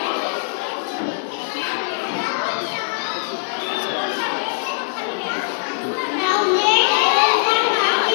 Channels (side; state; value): right; silent; digital silence